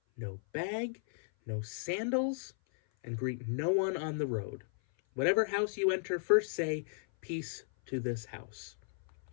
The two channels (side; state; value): right; silent; 54 dB below the other